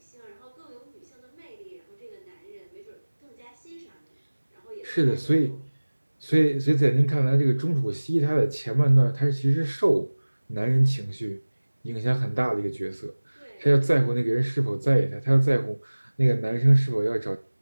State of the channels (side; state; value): both; inverted; correlation -1.00